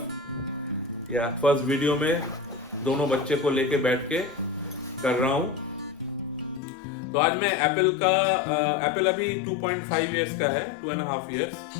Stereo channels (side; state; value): right; drops out; at 6.6 s